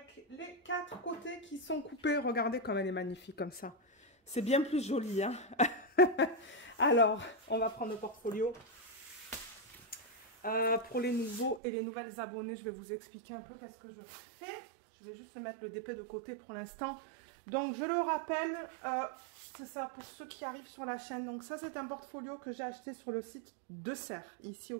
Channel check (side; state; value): left; drops out; at 11.6 s